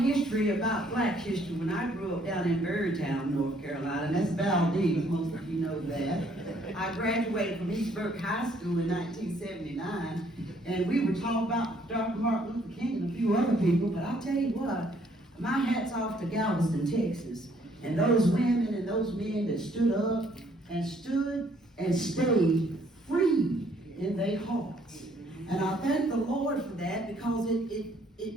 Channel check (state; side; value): normal; both; correlation 0.65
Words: history about black history when I grew up down in Berrytown, North Carolina, and that's Valdez, most of you know that. I graduated from East Burke High School in 1979, and we were taught about Dr. Martin Luther King and a few other people, but I'll tell you what, my hat's off to Galveston, Texas, and those women and those men that stood up and stayed free in their hearts. And I thank the Lord for that because